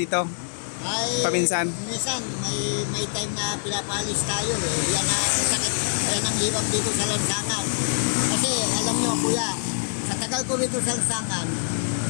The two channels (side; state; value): right; silent; digital silence